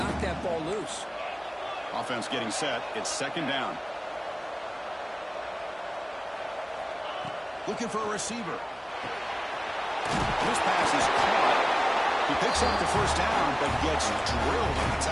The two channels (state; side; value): identical; both; correlation 1.00